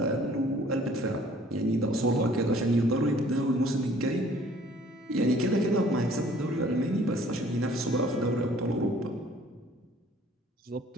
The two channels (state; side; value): normal; both; correlation 0.56